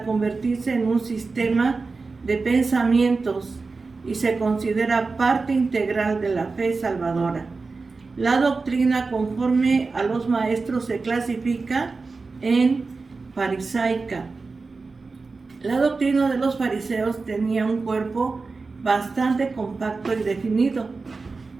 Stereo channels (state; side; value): quieter; left; 4.1 dB